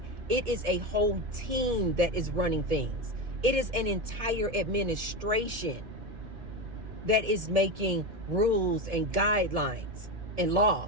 it is a whole team that is running things, it is an entire administration that is making rules and guidelines and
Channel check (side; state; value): left; late; 2.1 ms